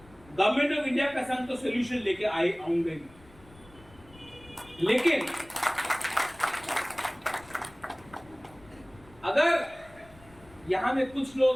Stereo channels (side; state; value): left; noise; rumble, 24 dB below the sound